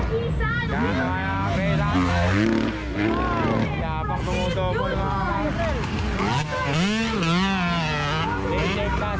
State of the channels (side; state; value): both; identical; correlation 1.00